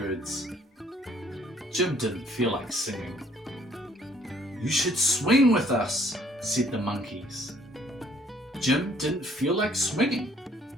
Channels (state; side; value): normal; both; correlation 0.62